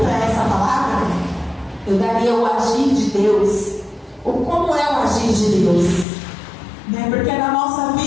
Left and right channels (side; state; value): right; drops out; at 6.1 s